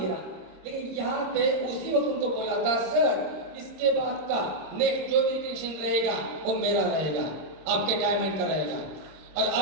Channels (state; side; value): late; left; 26 ms